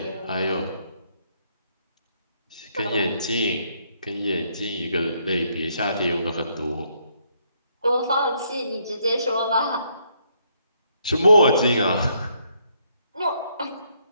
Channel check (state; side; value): inverted; both; correlation -0.72